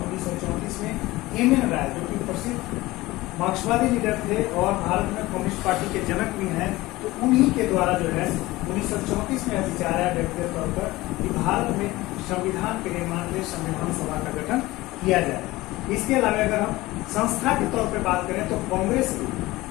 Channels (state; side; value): quieter; right; 19.2 dB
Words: 1934 में एमएन राय, जो कि प्रसिद्ध मार्क्सवादी लीडर थे और भारत में कम्युनिस्ट पार्टी के जनक भी हैं, तो उन्हीं के द्वारा जो है 1934 में विचार आया व्यक्तिगत तौर पर कि भारत में संविधान के निर्माण के लिए संविधान सभा का गठन किया जाए। इसके अलावा अगर हम संस्था के तौर पर बात करें तो कांग्रेस की